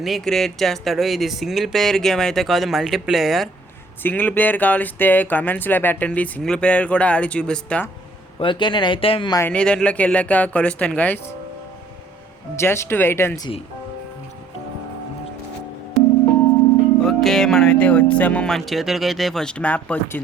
క్రియేట్ చేస్తాడు. ఇది సింగిల్ ప్లేయర్ గేమ్ అయితే కాదు, మల్టీప్లేయర్. సింగిల్ ప్లేయర్ కావలిస్తే కమెంట్స్లో పెట్టండి, సింగిల్ ప్లేయర్ కూడా ఆడి చూపిస్తా. ఓకే, నేనైతే మనీ దాంట్లోకి వెళ్ళాక కలుస్తాను guys. Just wait and see. Okay, మనమైతే వచ్చాము. మన చేతులకి అయితే ఫస్ట్ మ్యాప్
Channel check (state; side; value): quieter; left; 3.6 dB